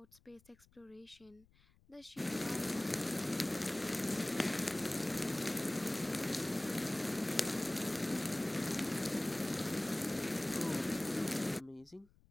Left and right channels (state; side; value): noise; left; rumble, 30 dB below the sound